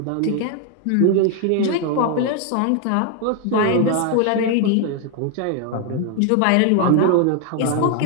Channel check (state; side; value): different; both; correlation 0.00